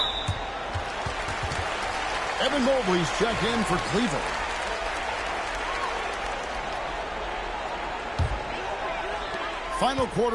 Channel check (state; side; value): identical; both; correlation 1.00